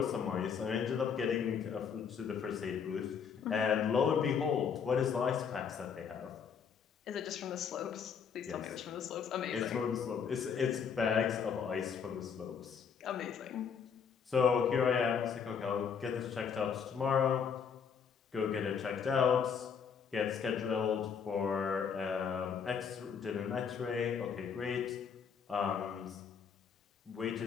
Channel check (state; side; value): quieter; right; 6.8 dB